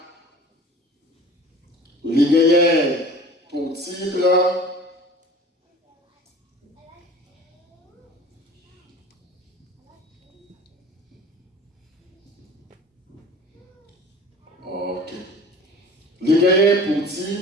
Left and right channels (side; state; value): both; normal; correlation 0.43